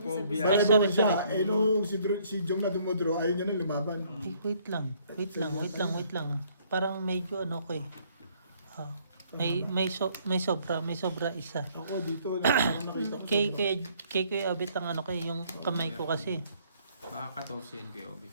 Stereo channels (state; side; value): inverted; both; correlation -0.64